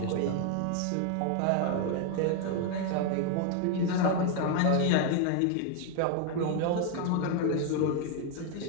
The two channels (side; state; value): both; different; correlation 0.01